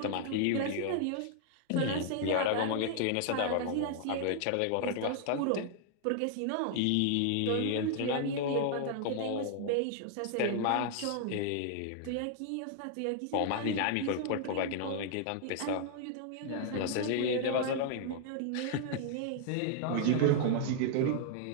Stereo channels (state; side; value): different; both; correlation -0.01